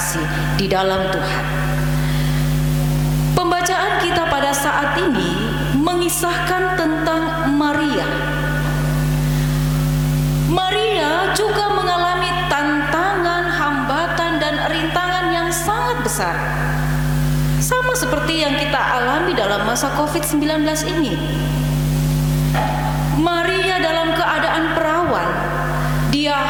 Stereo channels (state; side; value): identical; both; correlation 1.00